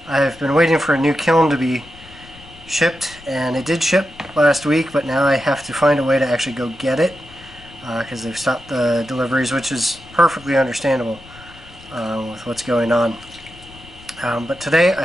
been waiting for a new kiln to be shipped, and it did ship last week, but now I have to find a way to actually go get it because they've stopped the deliveries, which is perfectly understandable with what's going on. But today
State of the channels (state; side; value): noise; left; rumble, 21 dB below the sound